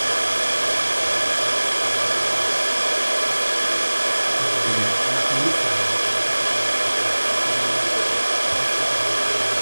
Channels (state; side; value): inverted; both; correlation -1.00